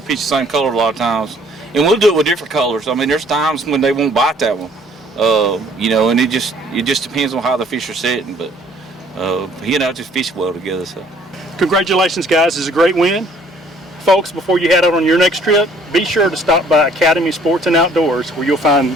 pitch the same color a lot of times, and we'll do it with different colors. I mean, there's times when they won't bite that one, you know, and it just depends on how the fish are setting. But he and I just fish well together. So, congratulations, guys! It's a great win, folks. Before you head out on your next trip, be sure to stop by Academy Sports and Outdoors, where you'll find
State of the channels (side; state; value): both; normal; correlation 0.59